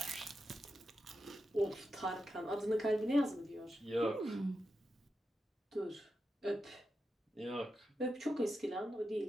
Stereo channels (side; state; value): both; normal; correlation 0.88